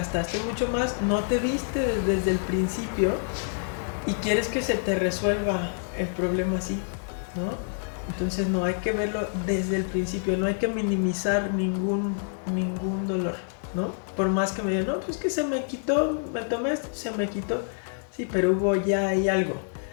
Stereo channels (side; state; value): right; silent; 60 dB below the other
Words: mucho más, no te viste desde el principio y quieres que se te resuelva el problema así, ¿no? Entonces no hay que verlo desde el principio, no hay que minimizar ningún dolor, ¿no? Por más que me digan, no, pues que se me quitó, me tomé esto, se me quitó. Sí, pero hubo ya ahí algo